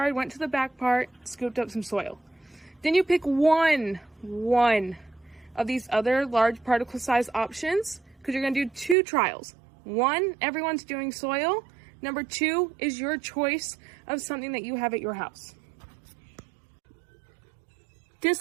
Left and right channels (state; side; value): drops out; left; at 9.0 s